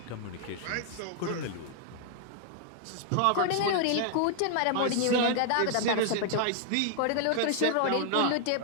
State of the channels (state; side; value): different; both; correlation 0.00